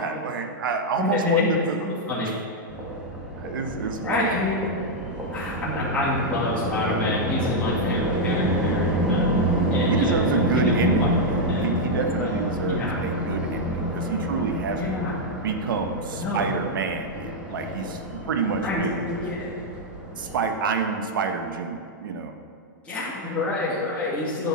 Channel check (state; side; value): normal; both; correlation -0.03